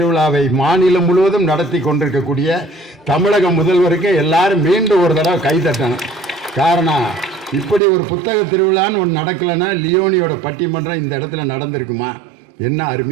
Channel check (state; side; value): drops out; left; at 7.8 s